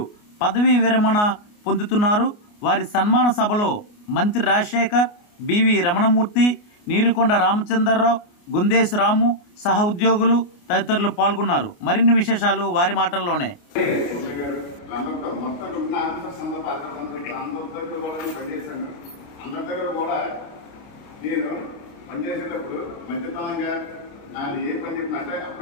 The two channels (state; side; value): late; right; 29 ms